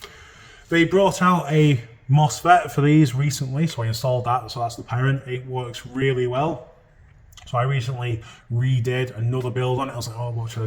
They brought out a MOSFET for these recently, so I installed that. So that's the parent. It works really well. So I recently redid another build on it. I was like, oh, what should I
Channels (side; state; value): both; identical; correlation 1.00